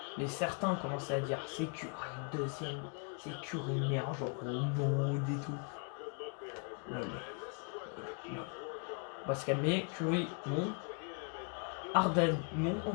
mais certains commençaient à dire, c'est Curry, deuxième, c'est Curry, meilleur joueur au monde et tout. Lol. Lol. On va se calmer. Curry, non. Harden, non.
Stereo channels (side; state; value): right; quieter; 36.4 dB